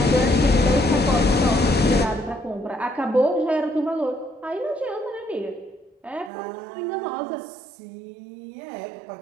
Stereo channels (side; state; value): left; drops out; at 6.3 s